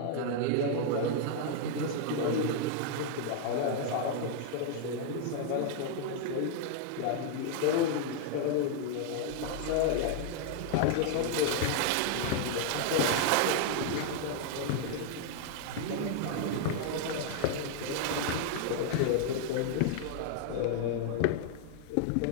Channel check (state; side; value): different; both; correlation 0.00